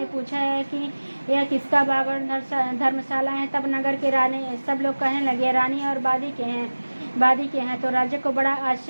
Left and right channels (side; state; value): both; inverted; correlation -1.00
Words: पूछा है कि यह किसका बाग और धर्मशाला है। तब नगर के रानी सब लोग कहने लगे, रानी और बादी के हैं। तो राजा को बड़ा